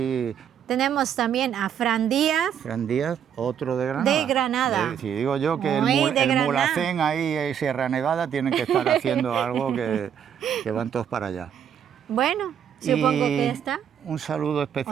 Tenemos también a Fran Díaz. Fran Díaz, otro de Granada. De Granada. Si digo yo que Muy el de Granada. Mulhacén ahí en Sierra Nevada tienen que estar haciendo algo que van todos para allá. Bueno, supongo que ya está. Un saludo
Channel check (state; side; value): quieter; left; 8.7 dB